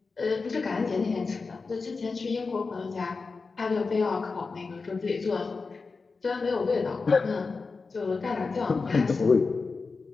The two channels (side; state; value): right; quieter; 4.3 dB